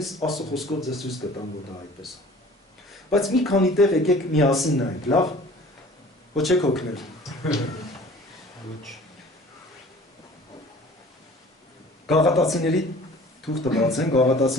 Աստծո խոսքով ձեզ ցույց կտամ, որ դա այդպես է։ Բայց մի քանի տեղ եկեք միասին նայենք, լավ։ Ոչ եք հոգնել։ Ոչ։ Գաղատացիների թուղթը բացեն,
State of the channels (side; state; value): both; normal; correlation 0.47